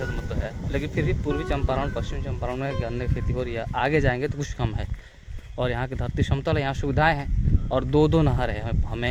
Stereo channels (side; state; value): both; identical; correlation 1.00